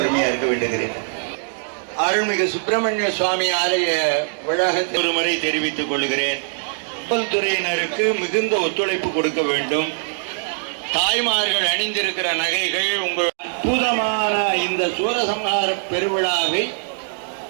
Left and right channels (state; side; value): silent; left; digital silence